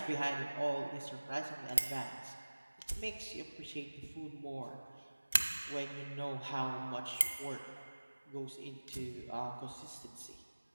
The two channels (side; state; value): both; inverted; correlation -1.00